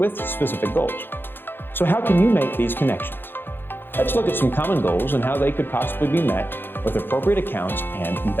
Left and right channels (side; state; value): right; late; 0.10 ms